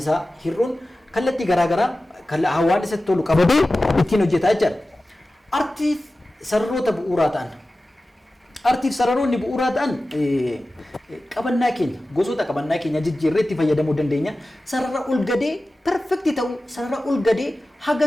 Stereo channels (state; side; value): normal; both; correlation 0.95